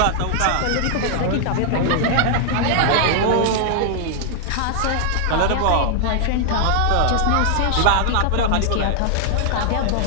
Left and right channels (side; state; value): both; different; correlation 0.00